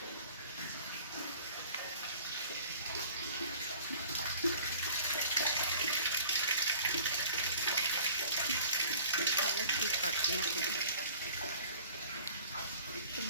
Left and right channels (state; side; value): inverted; both; correlation -0.47